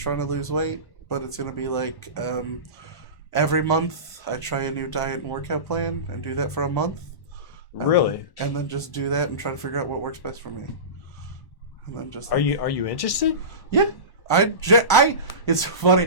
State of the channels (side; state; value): right; late; 1.0 ms